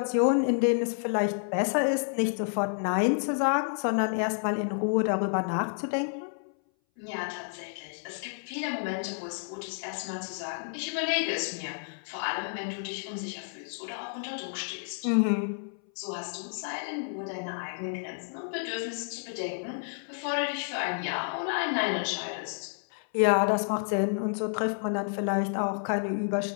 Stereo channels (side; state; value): right; silent; 58 dB below the other